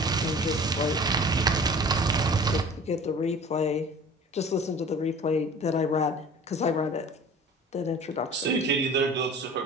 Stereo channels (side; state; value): both; normal; correlation 0.43